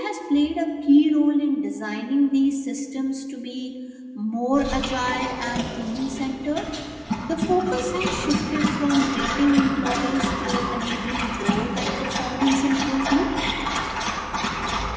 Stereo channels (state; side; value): identical; both; correlation 1.00